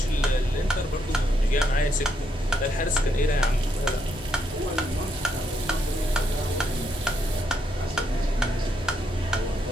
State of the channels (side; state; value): both; normal; correlation 0.76